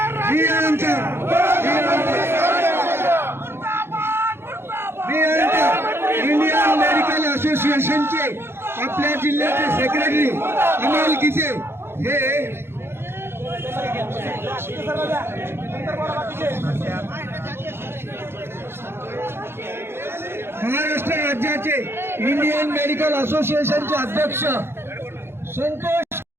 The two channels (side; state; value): left; late; 0.11 ms